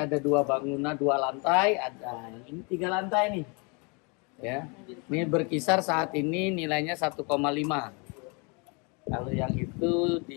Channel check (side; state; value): right; quieter; 32.5 dB